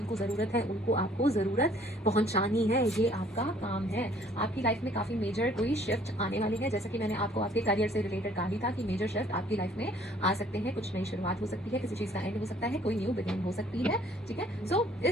ज़रूरत है उनको आपको ज़रूरत पहुंचानी है, ये आपका काम है। आपकी लाइफ में काफ़ी मेजर कोई शिफ्ट आने वाली है, जैसे कि मैंने आपको आपके करियर से रिलेटेड कहा ही था कि मेजर शिफ्ट आपकी लाइफ में आ सकते हैं। कुछ नई शुरुआत हो सकती है, किसी चीज़ का एंड हो सकता है, कोई न्यू बिगिनिंग हो सकती है, ठीक है। सो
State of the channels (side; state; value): both; normal; correlation 0.58